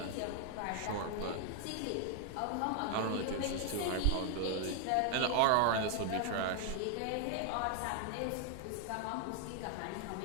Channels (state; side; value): different; both; correlation 0.00